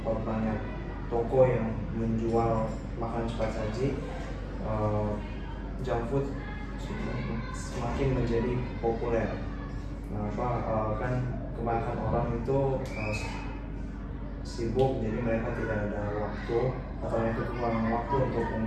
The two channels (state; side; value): identical; both; correlation 1.00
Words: banyak toko yang menjual makanan cepat saji, junk food semakin menjadi populer. Kan kebanyakan orang itu sibuk, jadi mereka tidak ada waktu atau mereka kekurangan waktu untuk